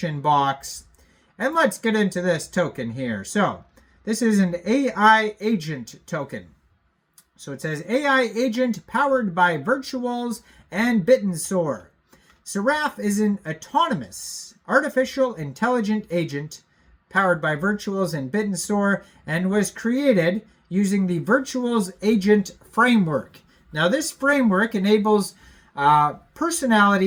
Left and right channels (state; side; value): identical; both; correlation 1.00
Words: box. And let's get into this token here. So, this is an AI agent token. So it says AI agent powered by Virtuals and BitTrue. Seraph is an autonomous artificial intelligent agent powered by Virtuals and BitTrue and was created using the Virtuals agent framework. Now this framework enables